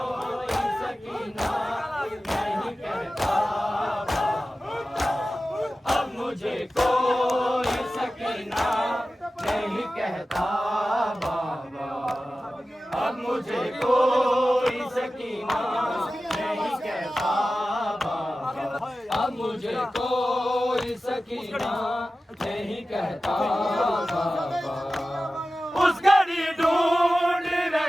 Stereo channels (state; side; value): normal; both; correlation 0.95